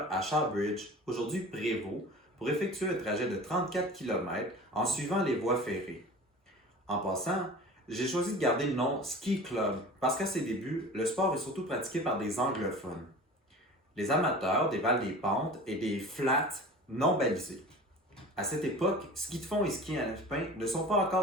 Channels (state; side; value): normal; both; correlation 0.39